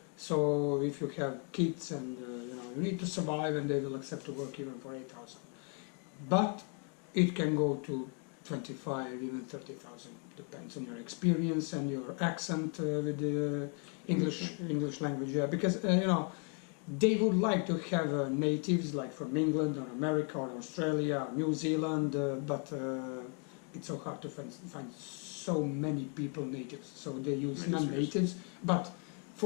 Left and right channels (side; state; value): right; quieter; 39.7 dB